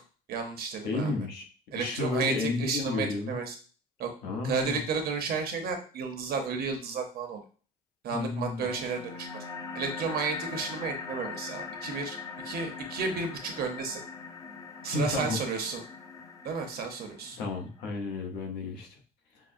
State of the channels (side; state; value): both; normal; correlation 0.33